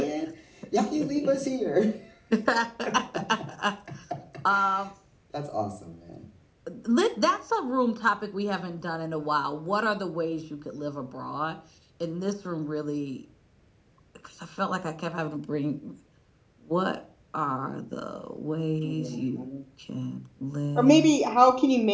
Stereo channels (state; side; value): identical; both; correlation 1.00